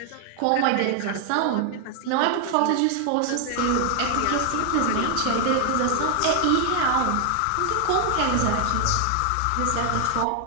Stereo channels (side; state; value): both; different; correlation 0.00